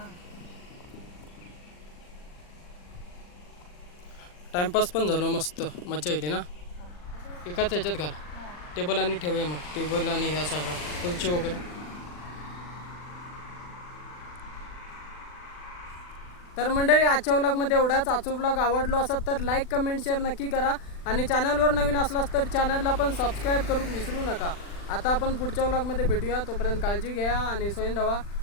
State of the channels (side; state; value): right; late; 40 ms